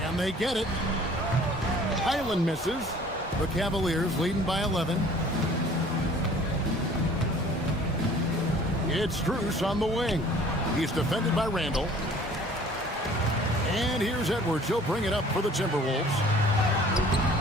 And they get it. Highland misses. The Cavaliers leading by 11. It's Strus on the wing. He's defended by Randall. And here's Edwards. He'll bring it up for the Timberwolves.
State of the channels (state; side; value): normal; both; correlation 0.51